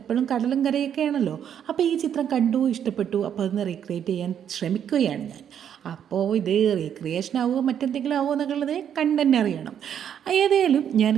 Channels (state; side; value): quieter; left; 9.0 dB